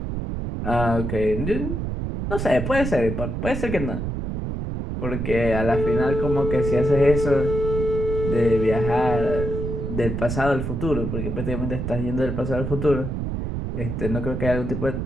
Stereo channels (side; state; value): right; noise; rumble, 3 dB below the sound